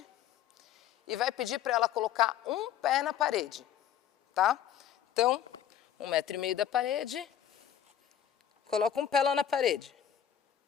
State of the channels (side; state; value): right; quieter; 10.2 dB